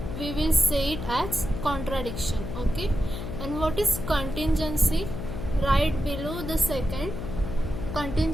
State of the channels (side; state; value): left; noise; hum, 6 dB below the sound